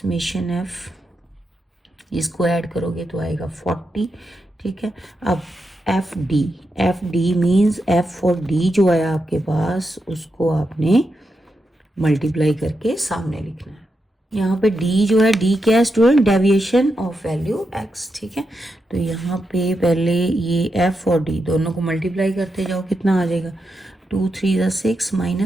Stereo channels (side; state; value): both; normal; correlation 0.86